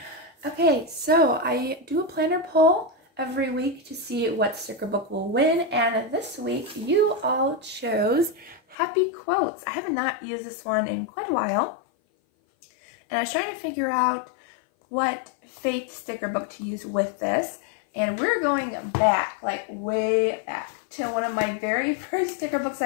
Okay, so I do a planner poll every week to see what sticker book will win, and this week you all chose Happy Quotes. I have not used this one in quite a while, and I was trying to figure out what faith sticker book to use with this. And we're going back, like way back, to one of my very first sticker books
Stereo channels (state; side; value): drops out; right; at 8.8 s